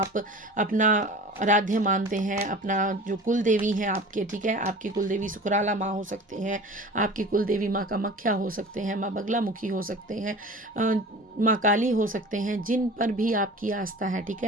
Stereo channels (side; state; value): both; normal; correlation 0.39